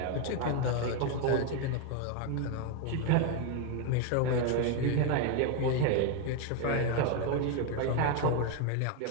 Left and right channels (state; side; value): different; both; correlation 0.01